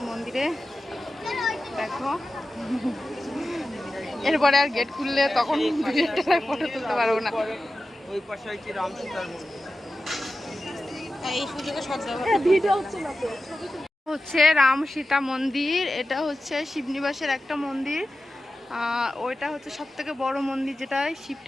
মন্দিরে, দেখো এরপরে আর গেট খুললে তখন ফটো তুলতে পারবো না। ওই পাশে হচ্ছে রাম সীতার মন্দির। এই সুযোগে হচ্ছে রাম সীতা মন্দির। এটা হচ্ছে শিবনিবাসের একটা মন্দির, ওইটা হচ্ছে সব থেকে বড় মন্দির যেটায় শিব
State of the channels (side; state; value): both; normal; correlation 0.93